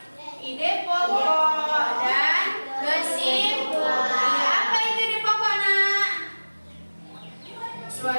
Ide pokok dan kesimpulan. Iya, apa itu ide pokok, Nak?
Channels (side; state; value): both; inverted; correlation -1.00